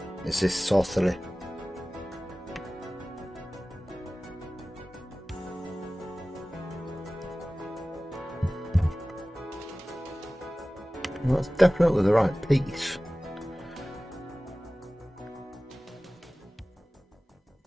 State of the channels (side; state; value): both; normal; correlation 0.97